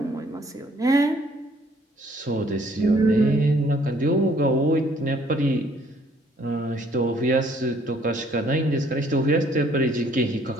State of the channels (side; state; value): both; normal; correlation 0.62